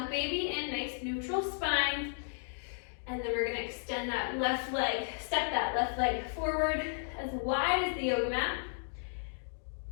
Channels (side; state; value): right; silent; digital silence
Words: baby in, nice neutral spine. And then we're gonna extend that left leg, step that left leg forward as wide as the yoga mat.